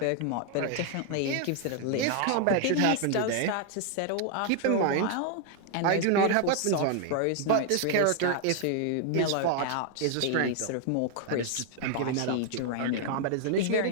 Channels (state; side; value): different; both; correlation 0.00